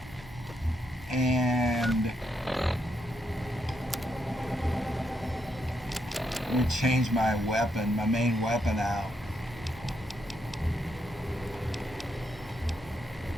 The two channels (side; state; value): both; normal; correlation 0.79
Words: And let me change my weapon, my main weapon out.